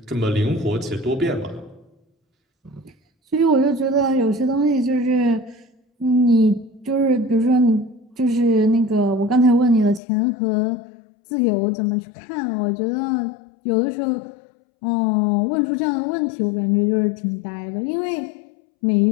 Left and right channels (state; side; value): drops out; right; at 10.0 s